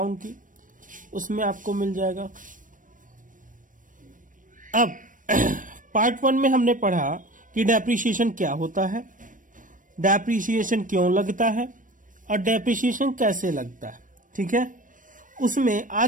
की, उसमें आपको मिल जाएगा। अब पार्ट 1 में हमने पढ़ा कि डेप्रिसिएशन क्या होता है, डेप्रिसिएशन क्यों लगता है और डेप्रिसिएशन कैसे लगता है, ठीक है। उसमें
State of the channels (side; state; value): left; late; 0.38 ms